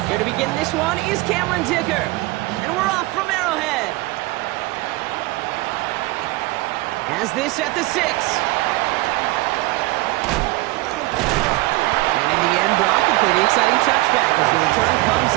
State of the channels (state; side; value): quieter; left; 20.9 dB